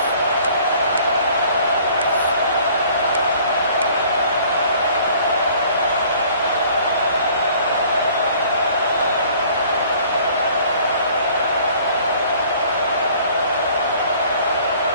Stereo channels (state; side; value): inverted; both; correlation -0.54